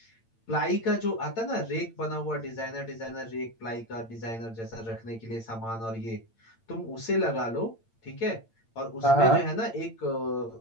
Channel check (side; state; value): right; late; 8.8 ms